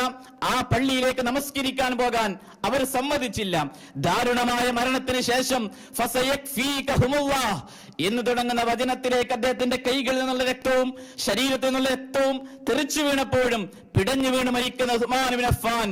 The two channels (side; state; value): both; identical; correlation 1.00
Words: ആ പള്ളിയിലേക്ക് നമസ്കരിക്കാൻ പോകാൻ അവർ സമ്മതിച്ചില്ല. ദാരുണമായ മരണത്തിന് ശേഷം ഫസയക്ഫീകഹുമുല്ലാഹ് എന്ന് തുടങ്ങുന്ന വചനത്തിലേക്ക് അദ്ദേഹത്തിന്റെ കൈകളിൽ നിന്നുള്ള രക്തവും ശരീരത്തിൽ നിന്നുള്ള രക്തവും തെറിച്ചു വീണപ്പോഴും പിടഞ്ഞു വീണ് മരിക്കുന്ന ഉസ്മാൻ ഇബ്നു അഫ്ഫാൻ